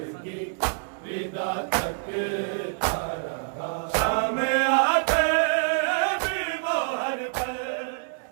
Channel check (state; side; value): silent; left; digital silence